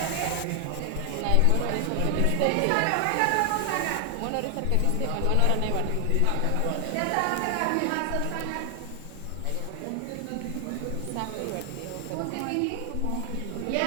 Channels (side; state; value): both; different; correlation 0.00